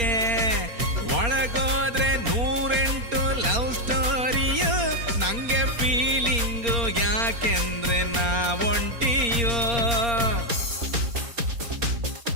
ಒಳಗೋದ್ರೆ 108 ಲವ್ ಸ್ಟೋರಿಯು, ನಂಗೆ ಫೀಲಿಂಗು ಯಾಕೆಂದ್ರೆ ನಾವೊಂಟಿಯೋ.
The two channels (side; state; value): left; late; 4.3 ms